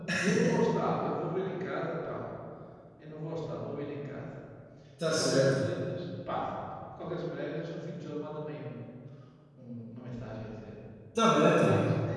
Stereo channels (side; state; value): both; identical; correlation 1.00